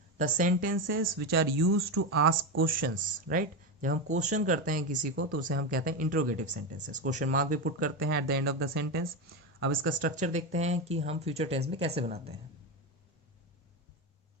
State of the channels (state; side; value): normal; both; correlation 0.14